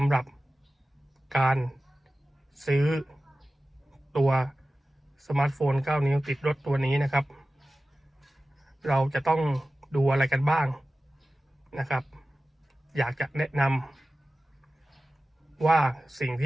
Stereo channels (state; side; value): normal; both; correlation 0.95